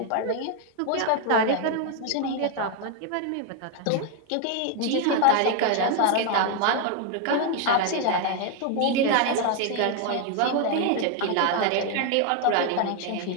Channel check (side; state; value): both; different; correlation 0.01